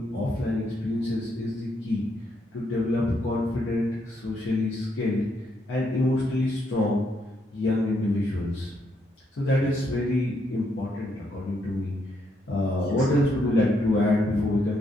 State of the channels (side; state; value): both; normal; correlation 0.76